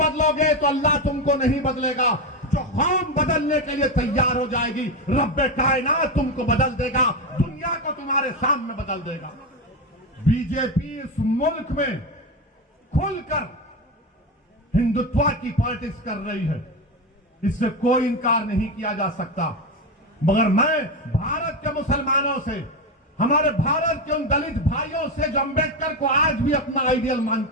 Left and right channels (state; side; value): normal; both; correlation 0.14